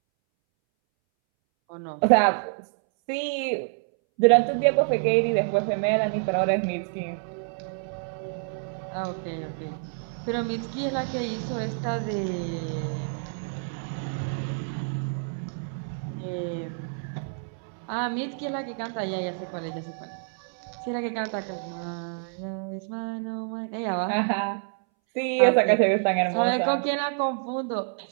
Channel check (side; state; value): left; silent; 60 dB below the other